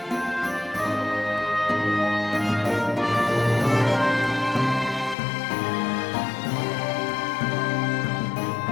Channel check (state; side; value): drops out; right; at 5.2 s